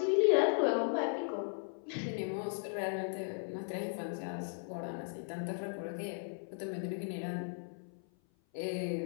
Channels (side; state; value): right; silent; 53 dB below the other